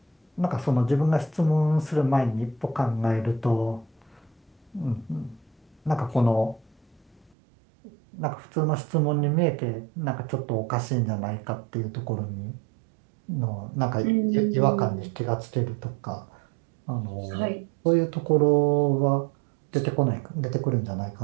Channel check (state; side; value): drops out; left; at 7.3 s